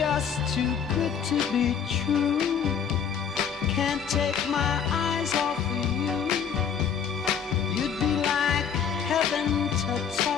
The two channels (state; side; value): quieter; right; 7.6 dB